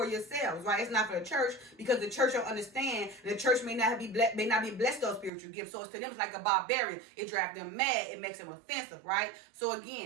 yourselves, right? It's not for the church, because the church don't understand. The church may not be blessed those spiritual gifts. So it's to them it's like a barbarian. It drives them mad. It makes them offensive, right? So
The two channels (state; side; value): drops out; left; at 5.3 s